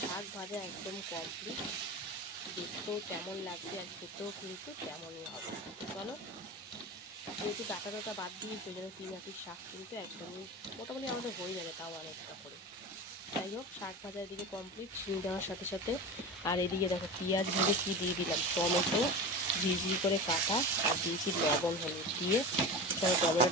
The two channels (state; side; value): normal; both; correlation 0.28